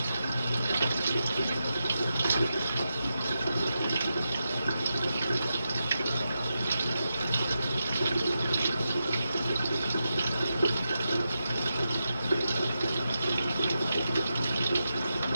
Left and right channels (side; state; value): both; inverted; correlation -0.88